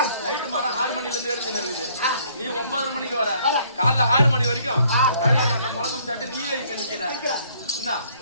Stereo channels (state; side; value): inverted; both; correlation -0.62